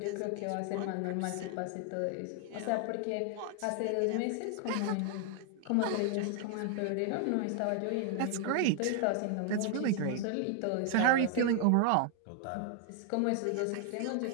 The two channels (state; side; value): different; both; correlation 0.00